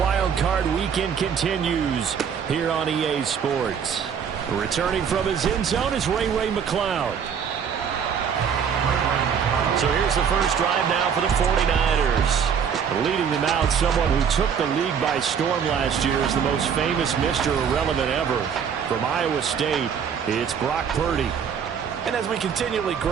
Card Weekend continues here on EA Sports. Returning from his end zone is Ray McCloud. So here's the first drive now for the 49ers. Leading them out, someone who took the league by storm last year is the most famous Mr. Irrelevant ever. From Iowa State, it's Brock Purdy. And as we continually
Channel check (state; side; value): quieter; left; 7.3 dB